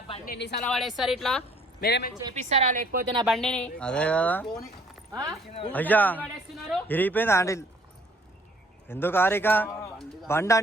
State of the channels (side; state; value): both; normal; correlation 0.59